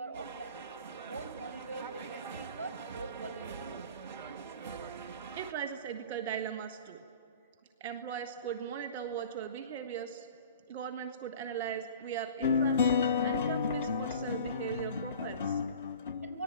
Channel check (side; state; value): both; inverted; correlation -0.42